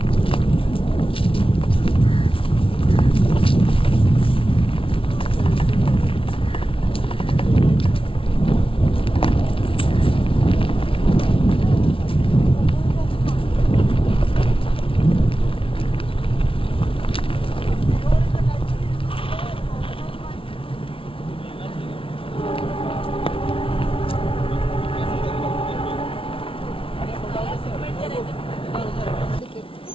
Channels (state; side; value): late; right; 0.26 ms